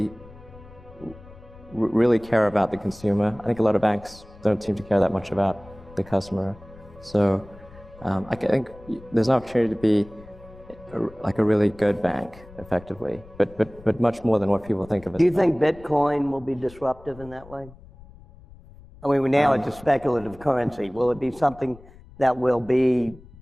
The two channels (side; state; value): left; noise; rumble, 21 dB below the sound